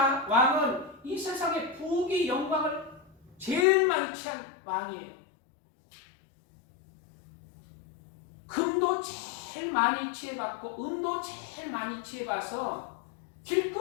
이 세상의 부귀 영광을 제일 많이 취한 왕이에요. 금도 제일 많이 취해봤고 은도 제일 많이 취해봐서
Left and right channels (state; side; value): drops out; right; at 3.7 s